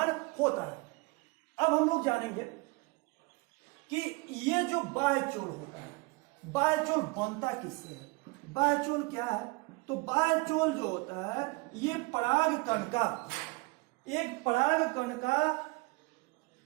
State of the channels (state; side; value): quieter; left; 26.5 dB